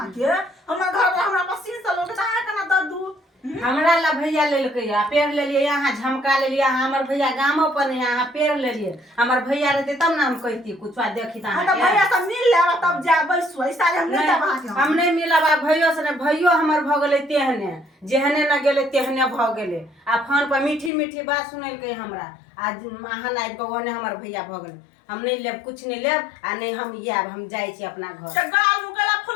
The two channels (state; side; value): drops out; right; at 20.9 s